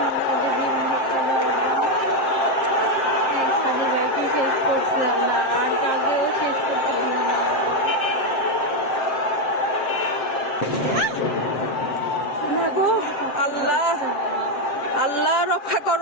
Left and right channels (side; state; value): right; late; 7.5 ms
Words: ওদের জীবন ভিক্ষা দাও আল্লাহ। সাদি ভাইকে শেষ করছে আল্লাহ, আর কাউকেও শেষ করতে দিও না না গো আল্লাহ আল্লাহ রক্ষা